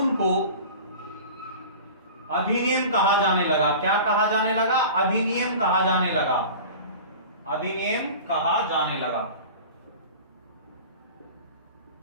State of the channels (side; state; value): both; inverted; correlation -0.37